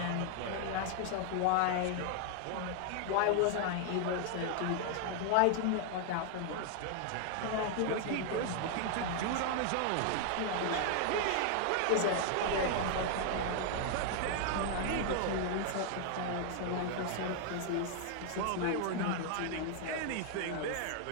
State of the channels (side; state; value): both; different; correlation 0.00